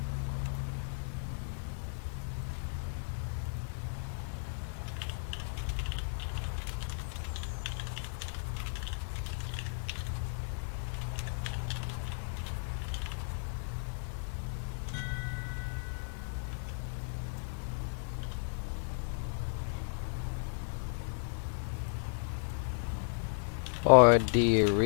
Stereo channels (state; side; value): silent; right; digital silence